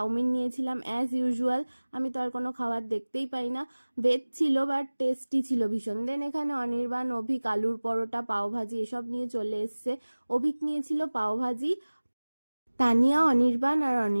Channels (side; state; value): both; inverted; correlation -1.00